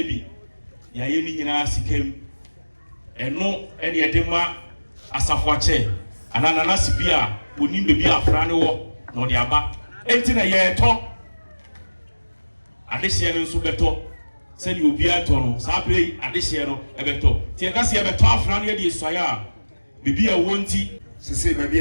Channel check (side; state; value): both; inverted; correlation -1.00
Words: Yayini in us came, and no any edema as a watcher, and an anasipia would need to be a frano, nor the abba. Enti ye to adehye no nso beto se ni obi ato sa pre adehye no ebeto tie ka se ebeto afra no ye die soya a bibi a wonti sese baby